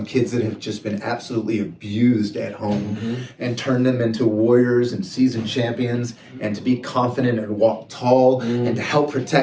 kids that have just been absolutely abused at home and turned them into warriors and seasoned champions, and to be confident and walk tall and to help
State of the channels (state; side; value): identical; both; correlation 1.00